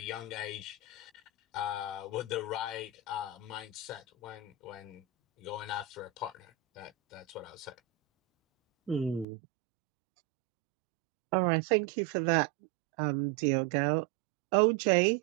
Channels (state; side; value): drops out; left; at 9.2 s